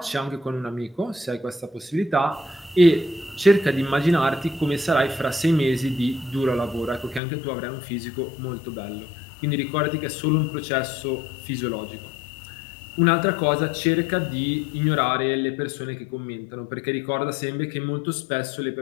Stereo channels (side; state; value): right; drops out; at 7.2 s